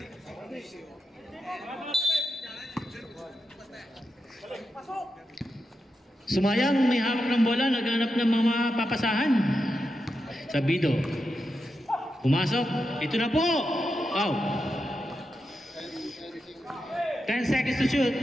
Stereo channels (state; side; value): normal; both; correlation 0.88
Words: Sumayang, may hawak ng bola, naghanap ng mga papasahan. Sabido. Pumasok. Ito na po. Wow. 10 seconds to shoot.